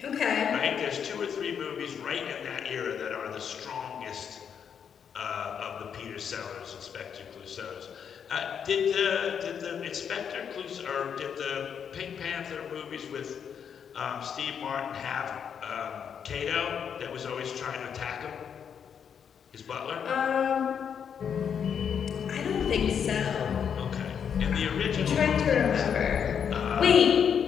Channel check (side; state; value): right; quieter; 7.6 dB